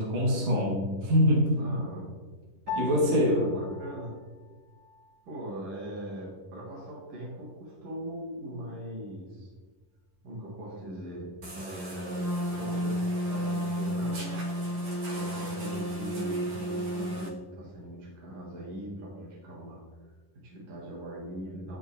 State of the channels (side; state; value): left; late; 11 ms